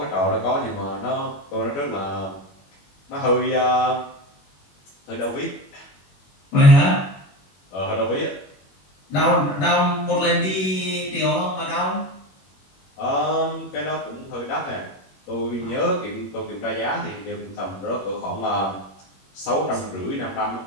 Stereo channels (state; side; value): late; right; 21 ms